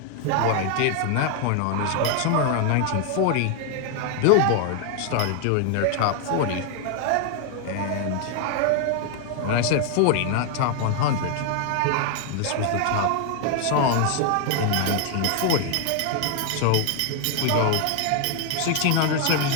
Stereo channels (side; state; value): both; different; correlation 0.00